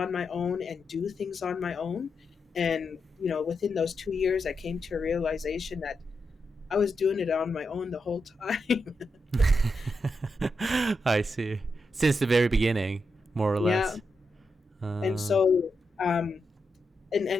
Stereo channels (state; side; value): normal; both; correlation 0.86